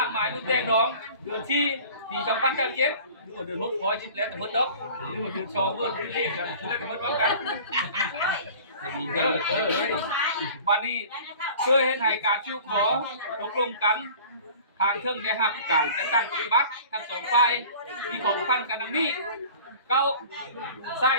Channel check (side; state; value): both; inverted; correlation -0.44